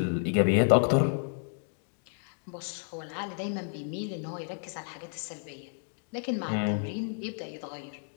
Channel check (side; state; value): right; silent; 57 dB below the other